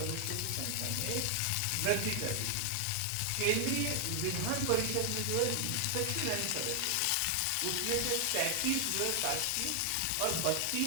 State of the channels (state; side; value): different; both; correlation 0.00